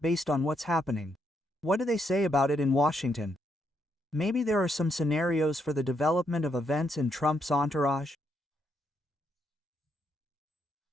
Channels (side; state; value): both; normal; correlation 0.77